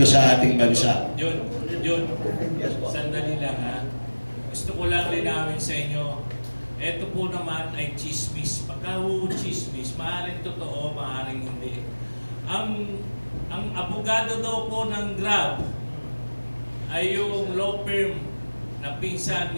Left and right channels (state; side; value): inverted; both; correlation -1.00